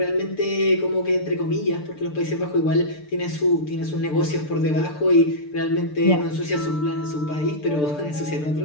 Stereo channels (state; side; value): late; right; 6.7 ms